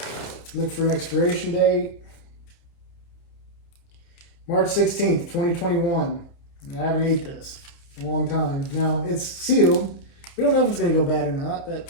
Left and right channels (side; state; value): right; late; 30 ms